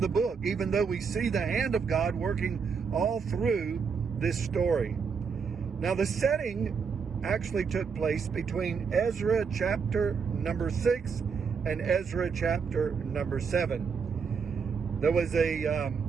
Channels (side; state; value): left; quieter; 5.8 dB